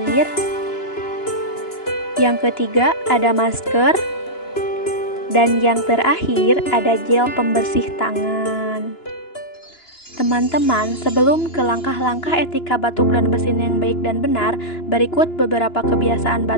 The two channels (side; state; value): right; late; 2.9 ms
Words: Yang ketiga, ada masker. Dan yang terakhir, ada gel pembersih tangan. Teman-teman, sebelum ke langkah-langkah etika batuk dan bersin yang baik dan benar, berikut beberapa kebiasaan